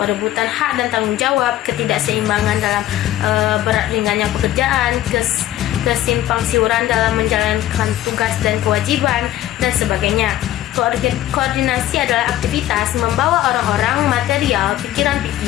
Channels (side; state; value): right; quieter; 13.5 dB